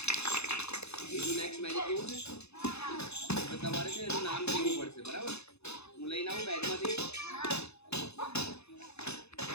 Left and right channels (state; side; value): late; right; 0.80 ms